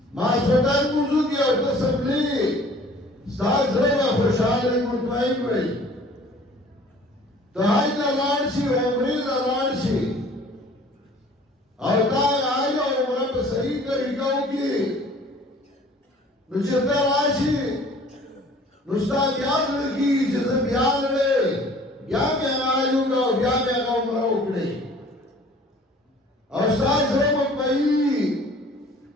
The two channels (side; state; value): both; normal; correlation 0.51